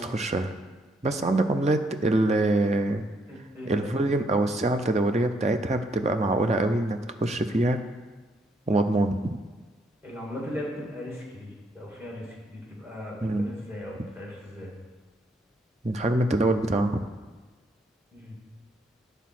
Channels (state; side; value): normal; both; correlation 0.73